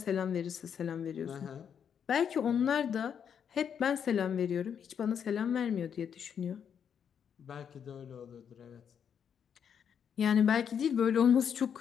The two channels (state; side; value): quieter; right; 7.9 dB